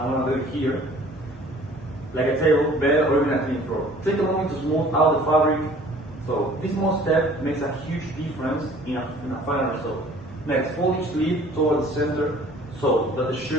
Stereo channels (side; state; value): both; normal; correlation 0.51